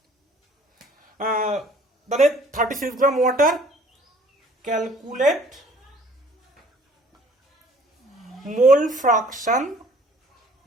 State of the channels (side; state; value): both; normal; correlation 0.55